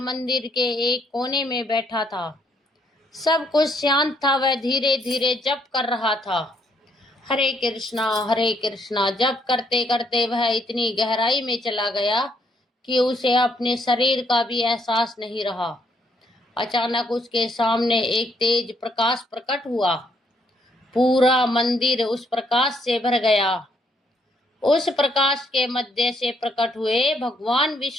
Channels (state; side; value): normal; both; correlation 0.71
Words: मंदिर के एक कोने में बैठा था। सब कुछ शांत था। वह धीरे धीरे जप कर रहा था, हरे कृष्णा जप करते करते वह इतनी गहराई में चला गया कि उसे अपने शरीर का भी एहसास नहीं रहा। अचानक उसके सामने एक तेज प्रकाश प्रकट हुआ। पूरा मंदिर उस प्रकाश से भर गया। उस प्रकाश के मध्य से प्रकट हुए भगवान